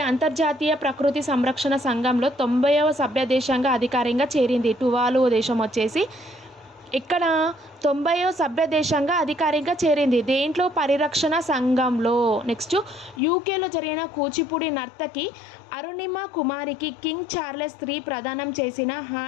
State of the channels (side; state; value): right; drops out; at 13.2 s